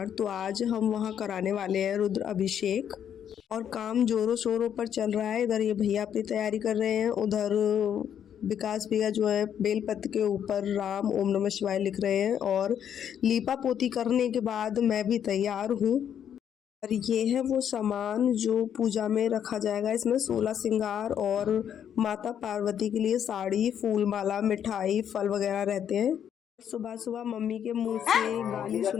तो आज हम वहां कराने वाले हैं रुद्र अभिषेक। और काम जोरों शोरों पर चल रहा है। इधर ये भैया अपनी तैयारी कर रहे हैं, उधर विकास भैया जो है बेलपत्र के ऊपर राम ओम नमः शिवाय लिख रहे हैं। और लीपा पोती करने के बाद मैं भी तैयार हूँ। और ये है वो सामान जो पूजा में रखा जाएगा। इसमें 16 श्रृंगार और माता पार्वती के लिए साड़ी, फूल माला, मिठाई, फल वगैरह रहते हैं। सुबह सुबह मम्मी के मुंह से गाली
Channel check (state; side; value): quieter; right; 9.1 dB